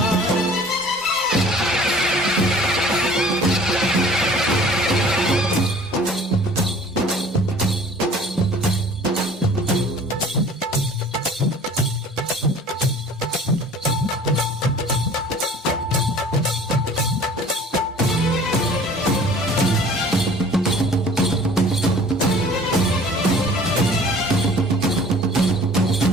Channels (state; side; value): normal; both; correlation 0.48